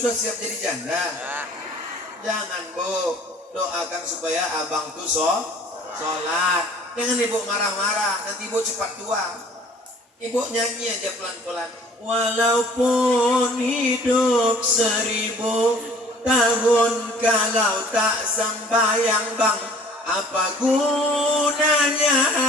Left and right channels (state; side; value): normal; both; correlation 0.52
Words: siap jadi janda. Jangan Bu, doakan supaya abang tuh sholat. Jangan ibu marah-marah, nanti ibu cepat tua. Ibu nyanyi aja pelan-pelan. Walaupun hidup 1000 tahun, kalau tak sembahyang bang, apa gunanya